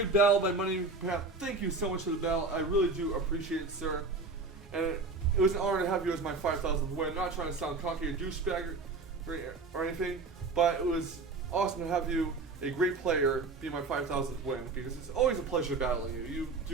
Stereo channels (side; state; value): left; quieter; 3.8 dB